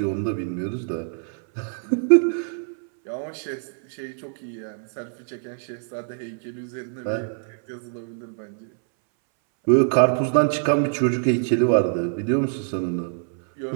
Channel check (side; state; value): left; silent; 60 dB below the other